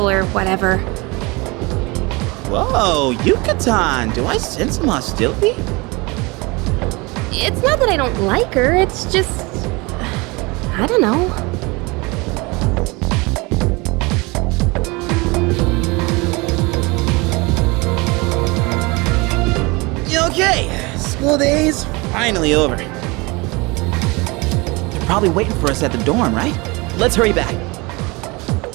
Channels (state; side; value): quieter; left; 25.6 dB